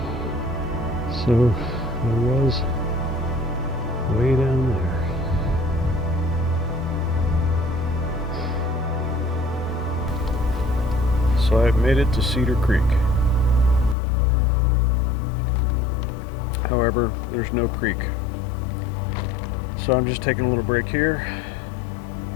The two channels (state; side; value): drops out; right; at 14.0 s